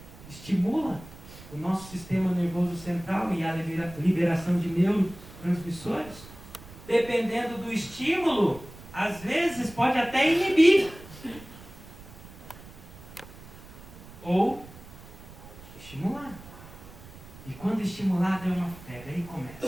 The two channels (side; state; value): right; noise; rumble, 18 dB below the sound